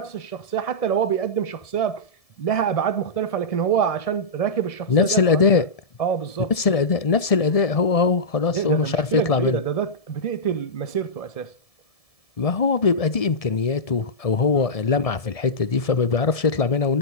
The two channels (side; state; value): right; late; 1.7 ms